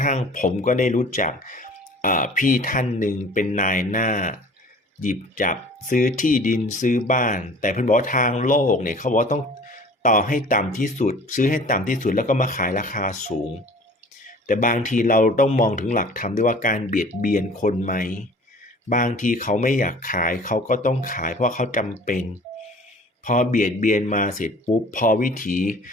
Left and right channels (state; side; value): normal; both; correlation 0.47